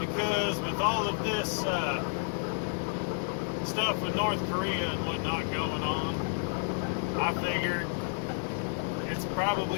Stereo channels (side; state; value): right; silent; digital silence